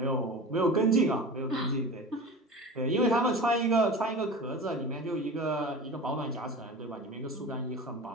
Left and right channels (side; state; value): both; normal; correlation 0.33